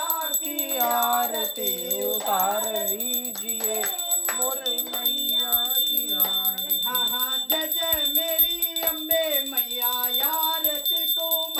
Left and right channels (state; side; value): identical; both; correlation 1.00